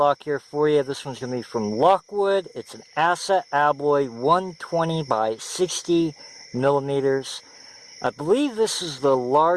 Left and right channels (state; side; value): identical; both; correlation 1.00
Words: here for you. This one's going to be from Lockwood. It's an Asa Abloy 120 by 60 millimeters. I believe this is the